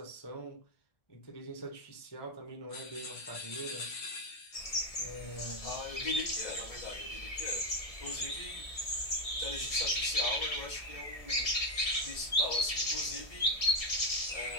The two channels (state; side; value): late; right; 1.7 ms